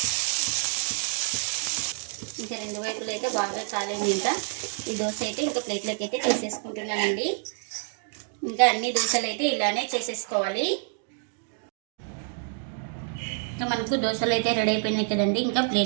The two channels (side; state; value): left; silent; 56 dB below the other